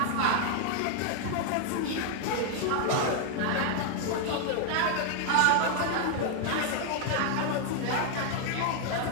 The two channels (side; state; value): both; different; correlation 0.00